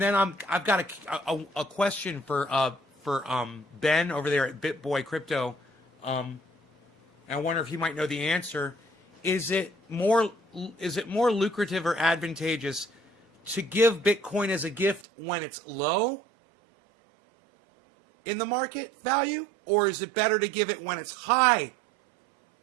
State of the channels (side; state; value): left; drops out; at 15.1 s